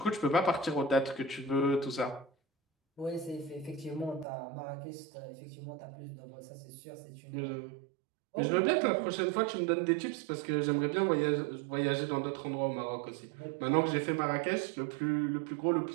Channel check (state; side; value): drops out; left; at 4.2 s